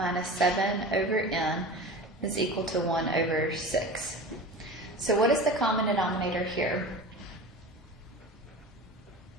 7 over n is equal to 1 over 6. So what is the common denominator here?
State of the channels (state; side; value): normal; both; correlation 0.33